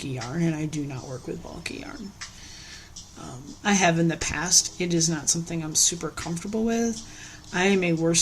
yarn, and I do not work with bulky yarn. I have in the past. It is not something I'm super comfortable with. I am a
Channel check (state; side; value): identical; both; correlation 1.00